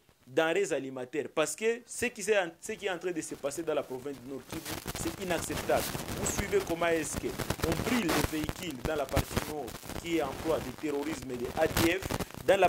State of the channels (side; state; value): both; identical; correlation 1.00